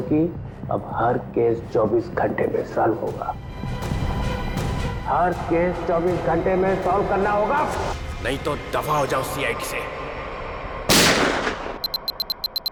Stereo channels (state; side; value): identical; both; correlation 1.00